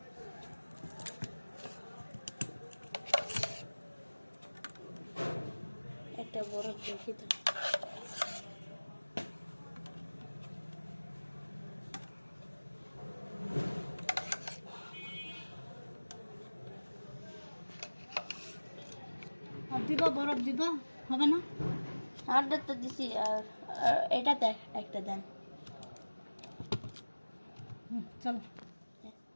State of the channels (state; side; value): inverted; both; correlation -1.00